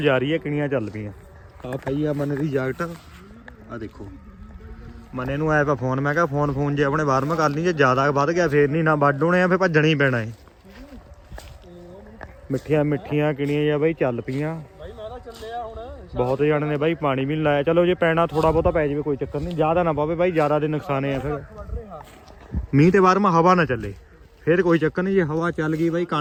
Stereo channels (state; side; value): identical; both; correlation 1.00